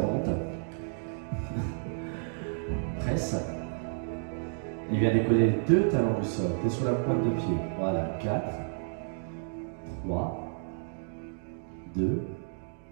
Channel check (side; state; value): left; silent; digital silence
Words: Presse. Il vient décoller les deux talons du sol. Tu es sur la pointe de pied. Voilà, 4, 3, 2.